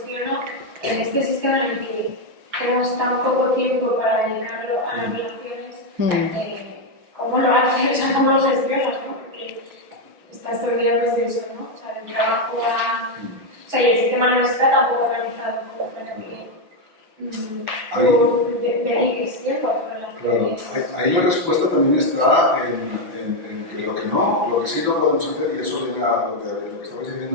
en este sistema en el que tenemos tan poco tiempo para dedicarlo a las relaciones, ¿cómo lo haces? O sea, ¿cómo lo gestionas? ¿No? Porque estás todo el día pues de eso, ¿no? O sea, del trabajo a... O sea, y el sistema no está tampoco organizado como para que dediques tiempo a tu relación. Claro, ahí la respuesta también está en que lo que sí no podemos hacer, y eso viene a lo que estabais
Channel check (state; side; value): late; left; 5.9 ms